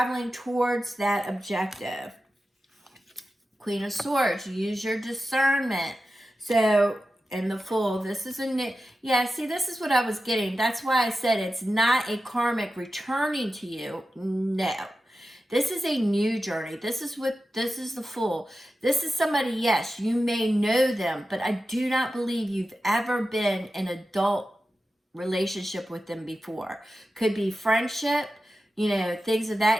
towards that objective. Queen of Swords, use your discernment. So, and the Fool, this is a new, yeah, see, this is what I was getting. That's why I said it's not a karmic returning to you. No. This is a new journey. This is the Fool. This is somebody, yes, you may know them, but I do not believe you've ever been in an adult relationship with them before. Could be friendship, you know, things of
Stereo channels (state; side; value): normal; both; correlation 0.93